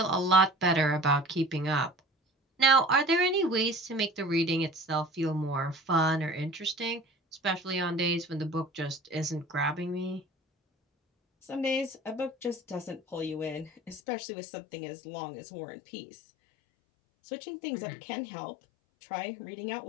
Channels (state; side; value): drops out; right; at 14.0 s